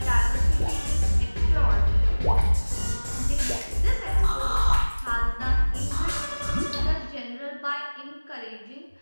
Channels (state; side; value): inverted; both; correlation -1.00